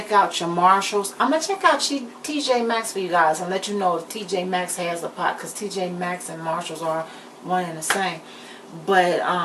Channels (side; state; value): both; identical; correlation 1.00